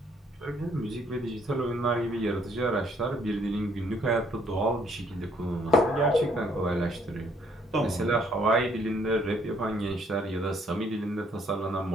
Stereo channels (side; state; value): both; normal; correlation 0.66